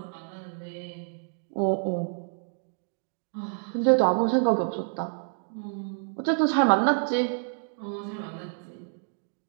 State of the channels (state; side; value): silent; left; 59 dB below the other